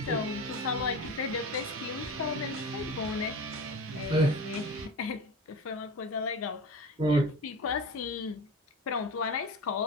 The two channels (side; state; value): both; normal; correlation 0.29